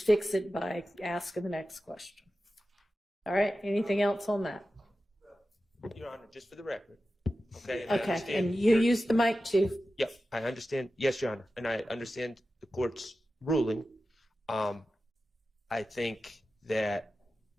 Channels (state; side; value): normal; both; correlation 0.93